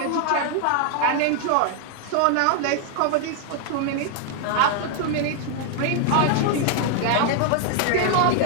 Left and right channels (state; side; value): different; both; correlation 0.00